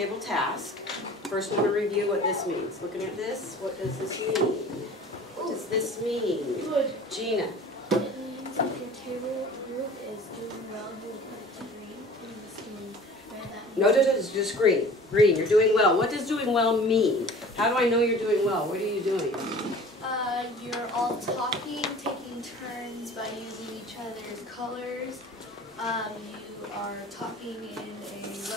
task. First want to review what this means. Looking at this, what does this mean? What does this mean? Gina. It means if your table group is doing well, you'll put it to green. And this means red. No, it's just green. Green, you're doing well. What does doing well mean? How do I know you're doing well? What are you doing? You're all talking, taking turns by using each other's colors. You are talking in a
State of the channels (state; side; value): normal; both; correlation 0.44